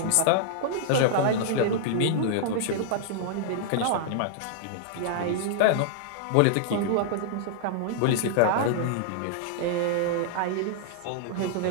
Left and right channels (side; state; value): both; different; correlation -0.01